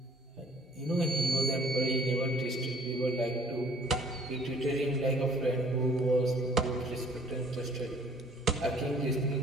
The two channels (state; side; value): normal; both; correlation 0.55